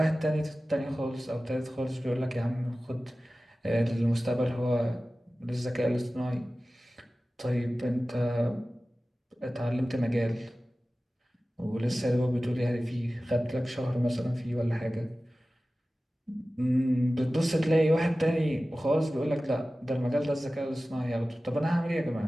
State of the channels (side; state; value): both; normal; correlation 0.96